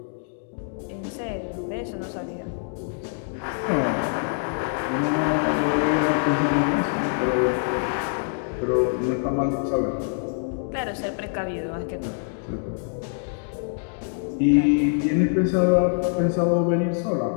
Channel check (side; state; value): right; silent; digital silence